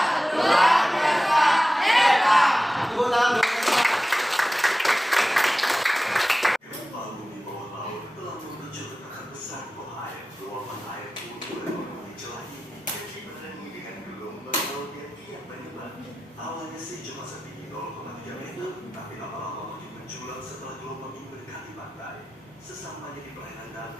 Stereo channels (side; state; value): both; normal; correlation 0.95